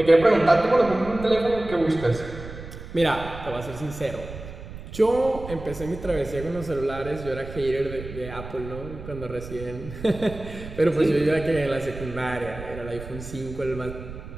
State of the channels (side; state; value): right; noise; rumble, 12 dB below the sound